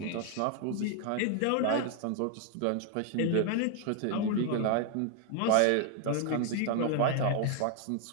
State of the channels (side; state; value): both; different; correlation 0.00